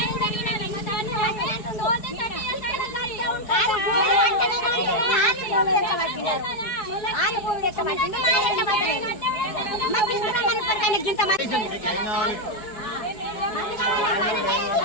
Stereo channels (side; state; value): right; late; 4.6 ms